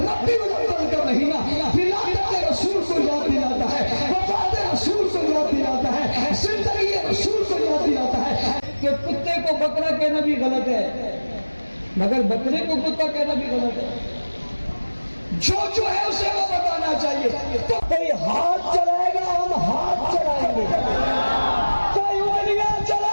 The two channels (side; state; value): both; inverted; correlation -1.00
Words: ربیع الاول کا مہینہ ولادت رسول کو یاد دلاتا ہے، وفات رسول کو یاد دلاتا ہے، زندگی رسول کو یاد دلاتا ہے کہ کتے کو بکرا کہنا بھی غلط ہے مگر بکرے کو کتا کہنا بھی غلط ہے۔ جو ہے اسے وہ بتانا چاہیے۔ تو کوئی ہاتھ چلائے گا ہم ہاتھ چلائیں گے، کوئی انگلیاں